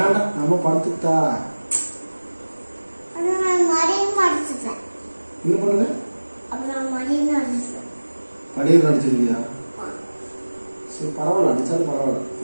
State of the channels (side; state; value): both; inverted; correlation -1.00